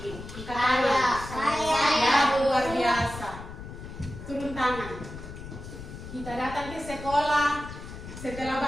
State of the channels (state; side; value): noise; left; rumble, 12 dB below the sound